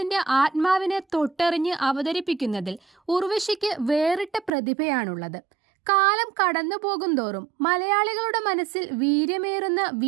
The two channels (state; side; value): drops out; left; at 4.5 s